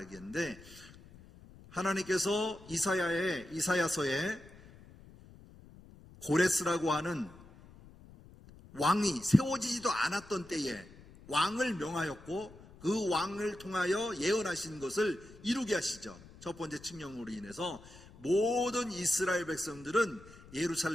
했는데, 하나님께서 이사야서에 고레스라고 하는 왕이 세워지지도 않았던 때에 왕을 명하였고, 그 왕을 통하여 예언하신 것을 이루게 하시죠. 첫 번째 칙령으로 인해서 모든 이스라엘 백성들은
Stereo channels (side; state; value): left; noise; rumble, 21 dB below the sound